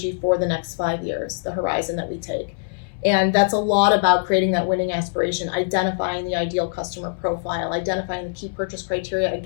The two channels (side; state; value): right; silent; 61 dB below the other